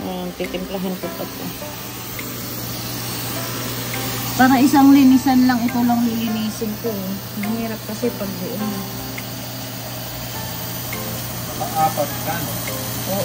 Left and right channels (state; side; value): identical; both; correlation 1.00